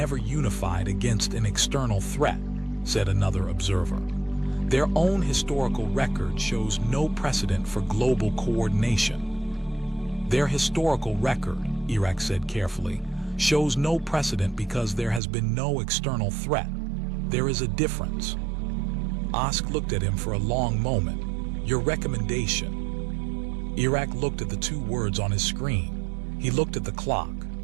unified against an external threat," said another observer. "Their own historical record shows no precedent for global coordination." "Their historical record," Iraq said carefully, "shows no precedent because there has been no external threat. There is a difference." Osk looked at him for a long moment. "Your recommendation." Iraq looked at the 2 words on his screen. He looked at the clock.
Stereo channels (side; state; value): left; drops out; at 15.2 s